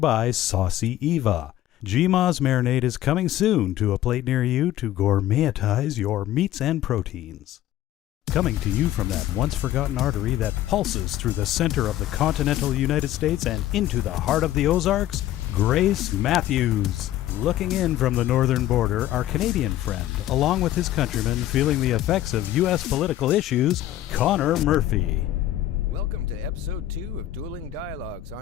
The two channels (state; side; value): quieter; right; 13.6 dB